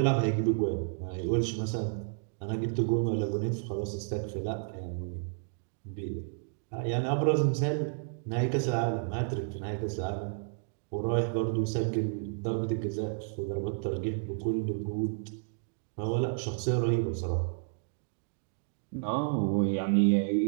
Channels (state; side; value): silent; left; digital silence